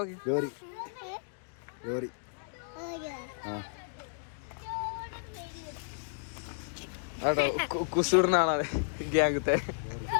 നോക്കി കേട്ടോ കുസൂറിന ആളാണ് ഗ്യാങ്ങത്തെ.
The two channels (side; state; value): right; silent; digital silence